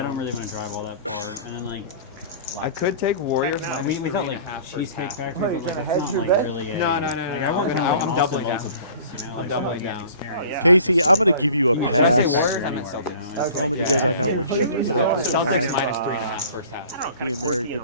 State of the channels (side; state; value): both; inverted; correlation -0.46